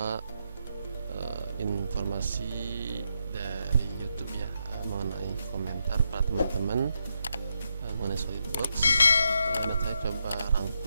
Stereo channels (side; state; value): both; inverted; correlation -0.82